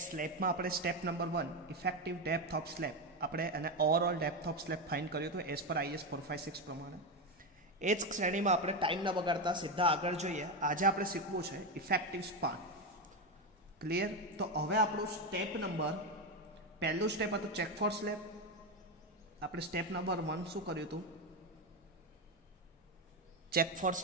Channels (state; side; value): normal; both; correlation 0.12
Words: સ્લેબમાં આપણે step number 1 effective depth of slab આપણે અને overall depth of slab find કર્યું હતું એઝ પર IS 456 પ્રમાણે. એ જ શ્રેણીમાં આપણે ટાઈમ ન બગાડતા સીધા આગળ જોઈએ. આજે આપણે શીખવું છે ઇફેક્ટિવ સ્પાન. ક્લિયર? તો હવે આપણું સ્ટેપ નંબર પહેલું સ્ટેપ હતું ચેક ફોર સ્લેબ. આપણે સ્ટેપ નંબર 1 શું કર્યું હતું? Check for